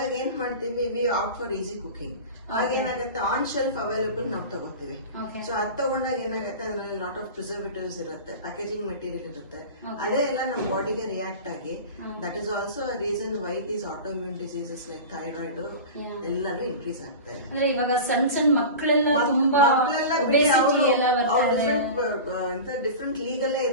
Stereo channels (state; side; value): inverted; both; correlation -0.31